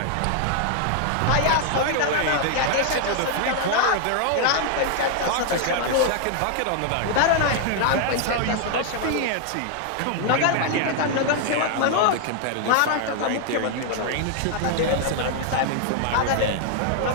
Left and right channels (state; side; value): different; both; correlation 0.00